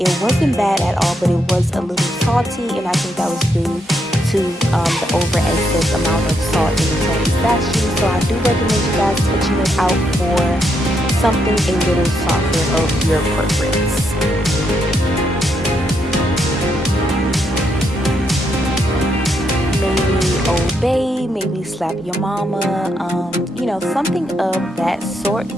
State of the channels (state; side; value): normal; both; correlation 0.78